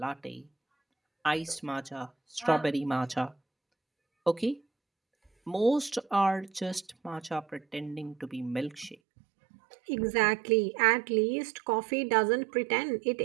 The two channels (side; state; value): left; drops out; at 9.0 s